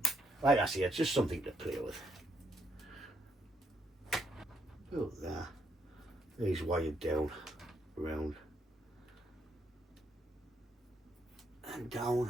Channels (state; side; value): normal; both; correlation 0.75